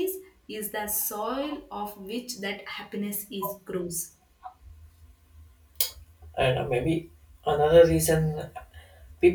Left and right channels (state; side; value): identical; both; correlation 1.00